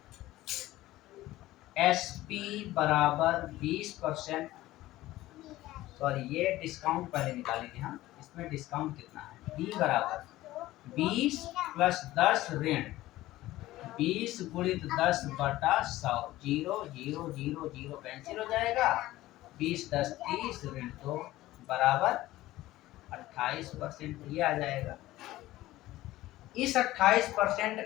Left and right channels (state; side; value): quieter; right; 16.5 dB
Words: SP बराबर 20%, सॉरी ये डिस्काउंट पहले निकालेंगे हम, इसमें डिस्काउंट कितना है, B बराबर 20 + 10 ऋण 20 गुणित 10/100, 0 0 0 0 कैंसिल हो जाएगा, 20 10 30 ऋण 2 बराबर 28%, ये आ जाएगा। इस 28%